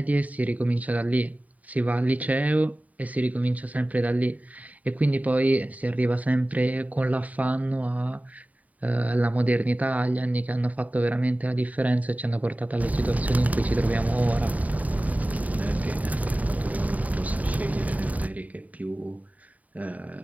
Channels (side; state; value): left; late; 0.073 ms